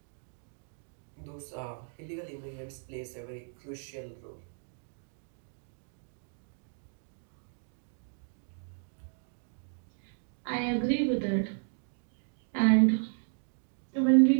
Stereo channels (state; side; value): silent; left; 55 dB below the other